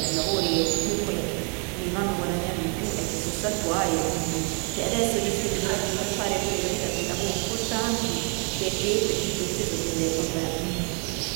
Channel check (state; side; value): quieter; left; 37.6 dB